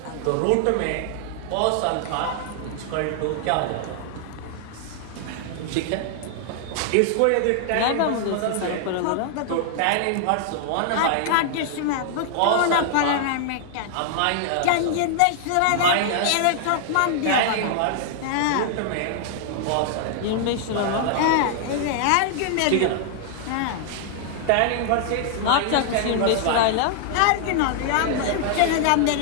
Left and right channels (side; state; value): both; different; correlation 0.00